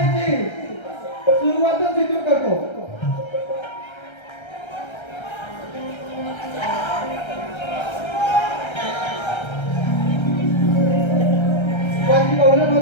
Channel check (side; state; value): right; late; 1.3 ms